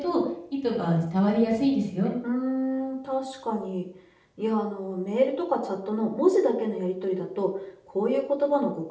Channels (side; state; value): both; identical; correlation 1.00